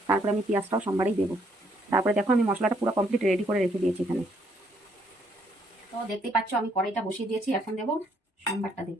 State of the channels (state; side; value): normal; both; correlation 0.69